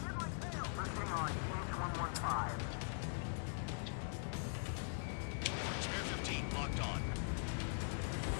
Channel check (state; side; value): silent; right; digital silence